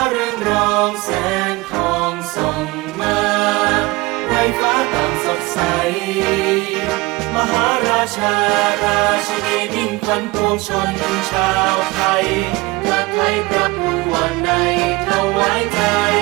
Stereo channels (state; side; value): quieter; left; 22.9 dB